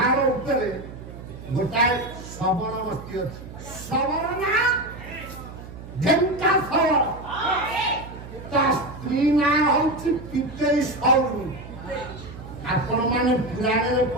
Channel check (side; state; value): right; noise; hum, 14 dB below the sound